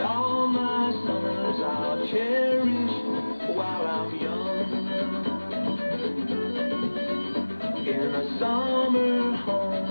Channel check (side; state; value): both; inverted; correlation -1.00